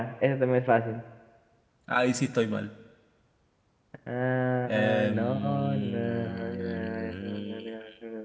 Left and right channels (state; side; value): identical; both; correlation 1.00